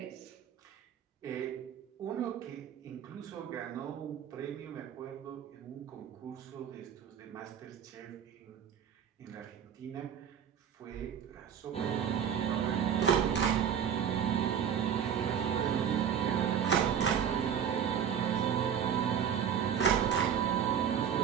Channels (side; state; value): left; quieter; 8.4 dB